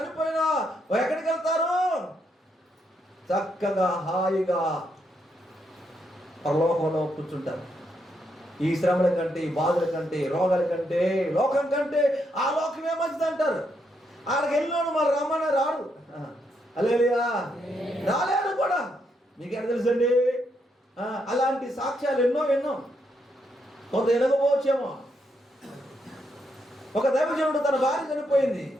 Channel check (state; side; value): normal; both; correlation 0.78